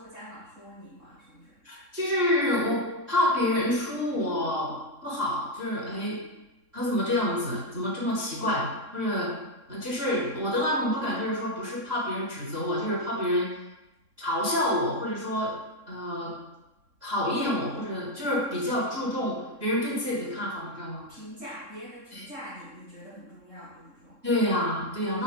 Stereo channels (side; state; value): left; late; 3.6 ms